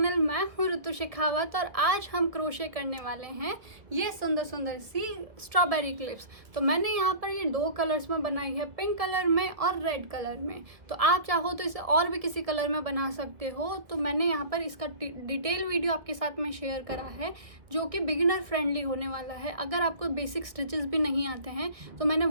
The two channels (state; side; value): late; left; 1.4 ms